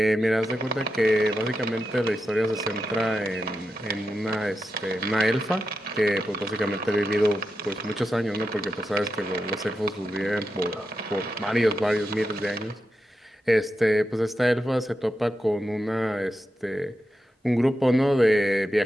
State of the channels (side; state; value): both; normal; correlation 0.89